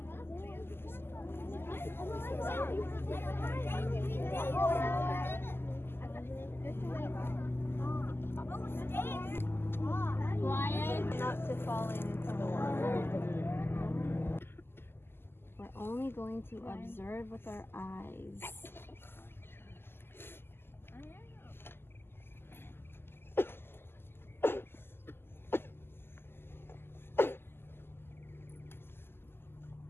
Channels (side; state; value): right; late; 0.11 ms